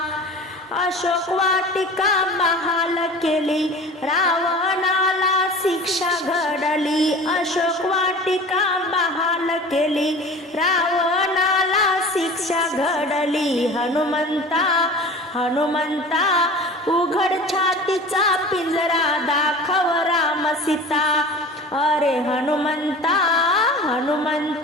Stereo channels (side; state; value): both; normal; correlation 0.39